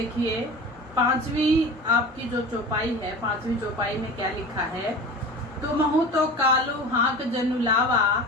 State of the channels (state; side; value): normal; both; correlation 0.34